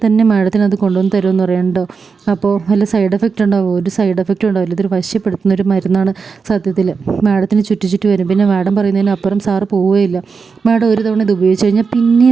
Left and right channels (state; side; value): quieter; left; 5.2 dB